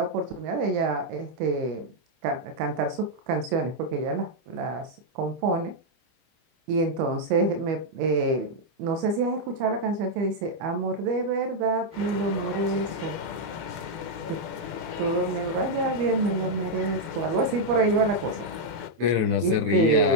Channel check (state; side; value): late; left; 25 ms